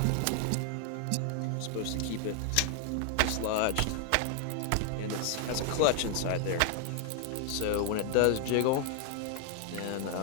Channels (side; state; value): both; different; correlation 0.00